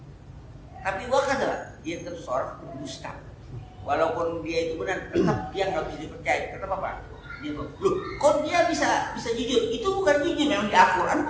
Tapi wa kadzaba, dia tetap seorang dusta. Walaupun dia itu benar, tetap dia nggak bisa dipercaya. Tetap apa? Dia bilang, loh, kok dia bisa jujur? Itu bukan jujur, memang di Al-Quran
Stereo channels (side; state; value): both; identical; correlation 1.00